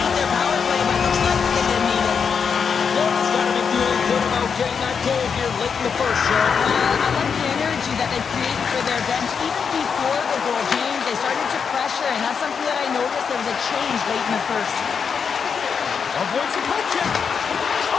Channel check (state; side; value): quieter; right; 6.3 dB